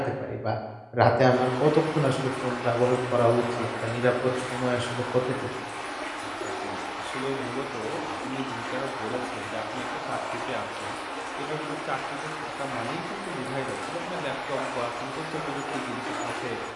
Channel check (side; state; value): both; identical; correlation 1.00